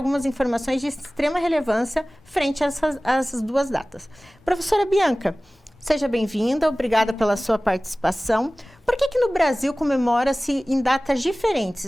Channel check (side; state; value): both; normal; correlation 0.98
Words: informações de extrema relevância frente a essas duas datas. Professora Bianca, seja bem-vinda, obrigada pela sua participação. Por que no Brasil comemora-se em datas